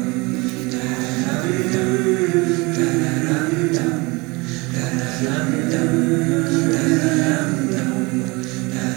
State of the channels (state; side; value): quieter; left; 25.7 dB